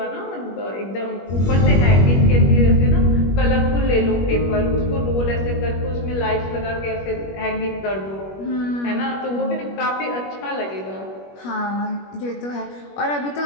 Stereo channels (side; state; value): right; late; 21 ms